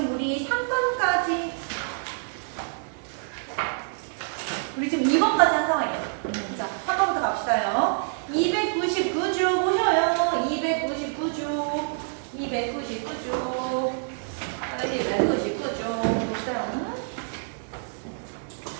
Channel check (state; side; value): silent; left; 60 dB below the other